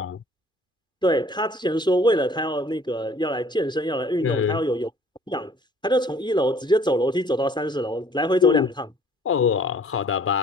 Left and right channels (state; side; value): normal; both; correlation 0.55